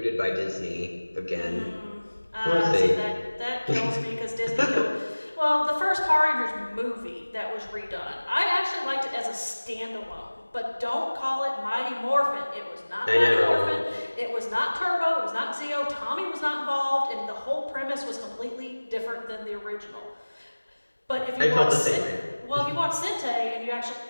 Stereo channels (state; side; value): inverted; both; correlation -1.00